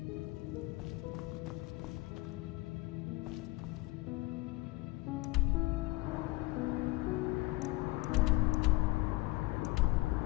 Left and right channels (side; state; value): right; quieter; 21.3 dB